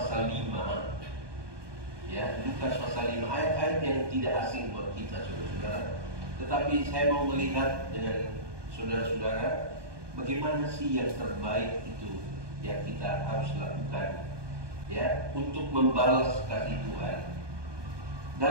5. Ya, Lukas pasal 5, ayat-ayat yang tidak asing buat kita saudara-saudara. Tetapi saya mau melihat dengan saudara-saudara bagaimana sih yang terbaik itu yang kita harus lakukan, ya, untuk membalas kasih Tuhan.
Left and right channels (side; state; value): left; late; 1.2 ms